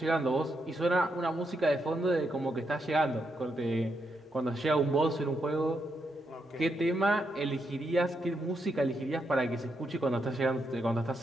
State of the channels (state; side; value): normal; both; correlation 0.81